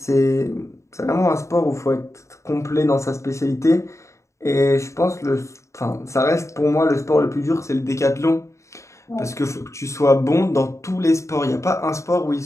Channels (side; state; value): right; late; 0.14 ms